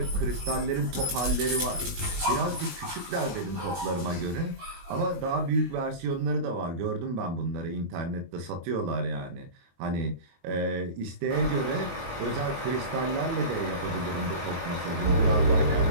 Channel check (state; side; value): late; left; 23 ms